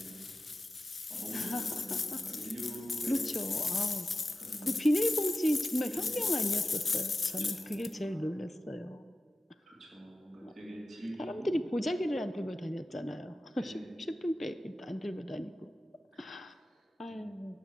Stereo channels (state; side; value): normal; both; correlation 0.93